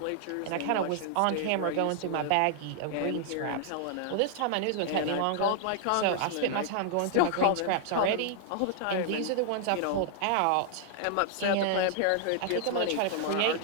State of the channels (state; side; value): different; both; correlation 0.00